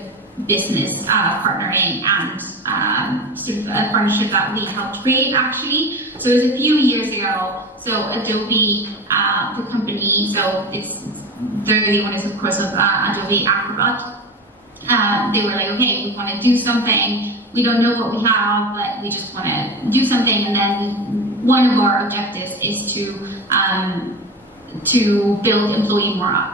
business partnering and sort of a partnership that we helped create actually. So it was a few years ago. So Adobe, the company, so they're the owners, of course, of Adobe Acrobat. They were like, okay, we want to do something. We don't know what we have, but we just want to do something. And then one of our objectives is to build employee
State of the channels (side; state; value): both; normal; correlation 0.28